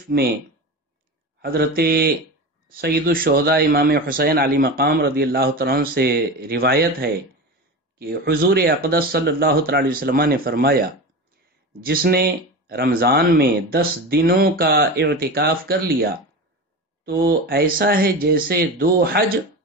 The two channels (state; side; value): normal; both; correlation 0.26